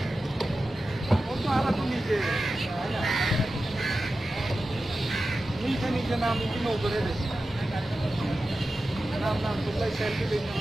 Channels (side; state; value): both; normal; correlation 0.93